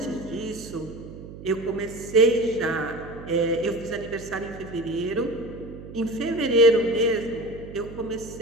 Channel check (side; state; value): right; noise; hum, 14 dB below the sound